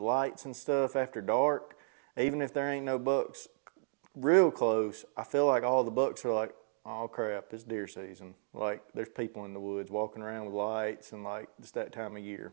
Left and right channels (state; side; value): silent; left; digital silence